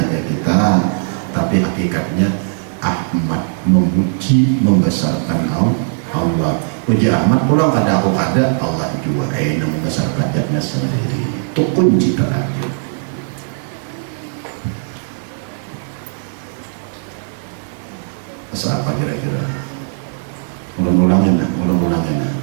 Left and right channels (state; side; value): silent; left; 68 dB below the other